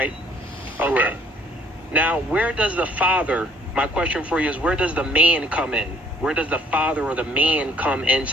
Okay. Correct. Now, where does the father, my question for you is, where does the man come in? Where does the father or the man come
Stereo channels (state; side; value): normal; both; correlation 0.60